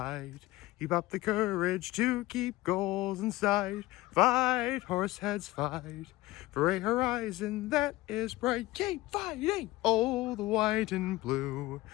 Keep up the courage to keep goals in sight. Fight, horseheads, fight. For a horizon that is bright. Keep fighting! Oh, the white and blue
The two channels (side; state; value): right; quieter; 18.5 dB